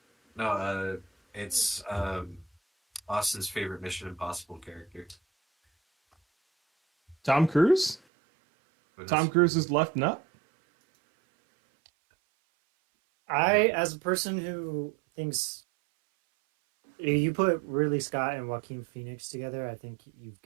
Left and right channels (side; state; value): left; drops out; at 8.0 s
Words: No, it's Austin's favorite Mission Impossible character. Tom Cruise? Tom Cruise's left nut? As a person who thinks you put Ridley Scott and Joaquin Phoenix together, I think you've